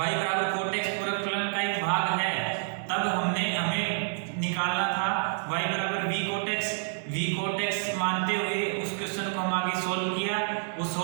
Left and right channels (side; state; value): left; silent; 59 dB below the other